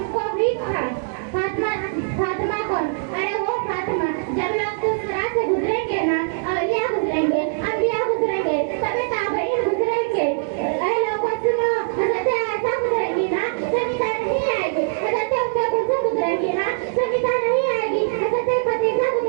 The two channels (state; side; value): silent; left; digital silence